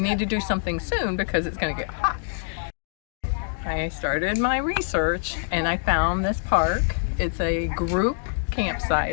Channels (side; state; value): right; silent; digital silence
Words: need to do something soon because it's going to get hot. I started my research and I found this park. It's a group